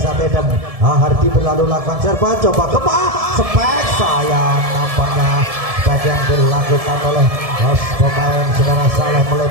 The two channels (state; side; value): late; left; 1.7 ms